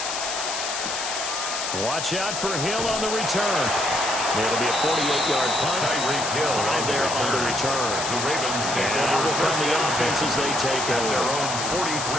Watch out for Hill on the return. It'll be a 48-yard punt. Tyreek Hill 5 there on the return. The Ravens take And over will come the offense as they take at their over. own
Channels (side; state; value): left; noise; hiss, 4 dB below the sound